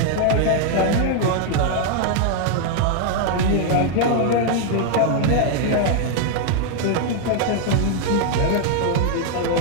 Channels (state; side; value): different; both; correlation 0.00